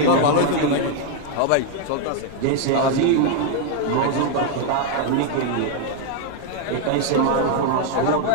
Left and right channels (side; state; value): both; different; correlation 0.00